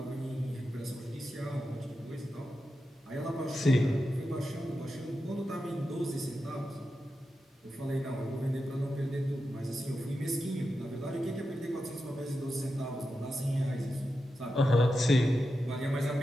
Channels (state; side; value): normal; both; correlation 0.89